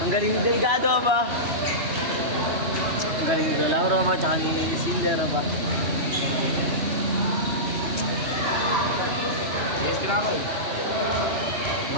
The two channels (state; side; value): late; left; 3.0 ms